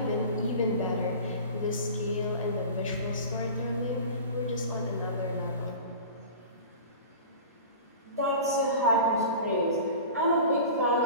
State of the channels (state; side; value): inverted; both; correlation -0.37